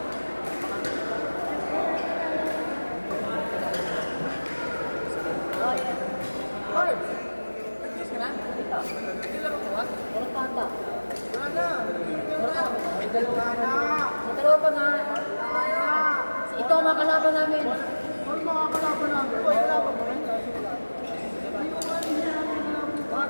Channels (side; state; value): both; inverted; correlation -1.00